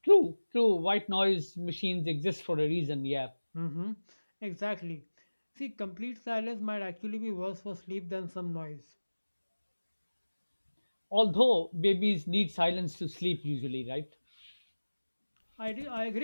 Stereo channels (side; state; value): both; inverted; correlation -1.00